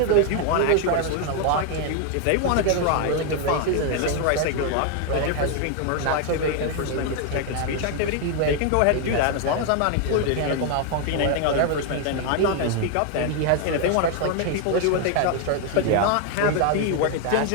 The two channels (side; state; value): both; different; correlation 0.01